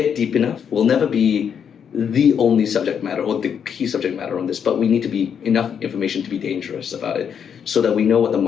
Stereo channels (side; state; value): right; quieter; 7.7 dB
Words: deep enough. We'll never be the only subject matter or the key subject matter on this, but we need to be enough information to be dangerous about it so that we know what the